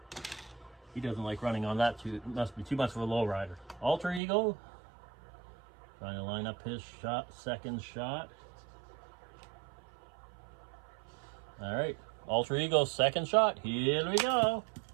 He doesn't like running on that too. It must be too much of a low rider. Alter ego. Trying to line up his shot, second shot. All right, alter ego, second shot. Here we go.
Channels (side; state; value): left; drops out; at 4.2 s